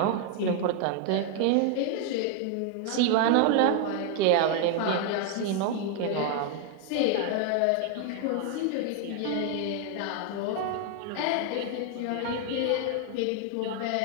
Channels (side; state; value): both; different; correlation 0.01